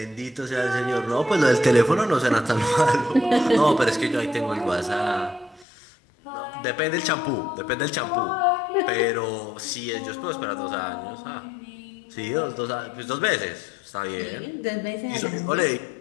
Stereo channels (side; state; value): right; drops out; at 5.7 s